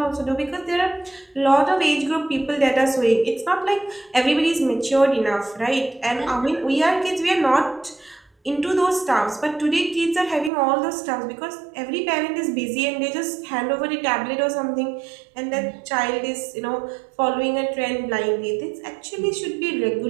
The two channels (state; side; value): drops out; left; at 10.5 s